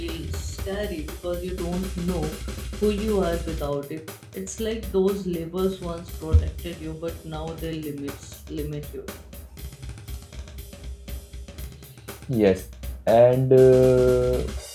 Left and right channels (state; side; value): identical; both; correlation 1.00